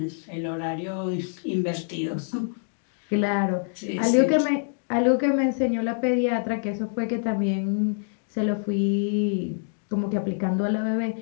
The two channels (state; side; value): silent; right; digital silence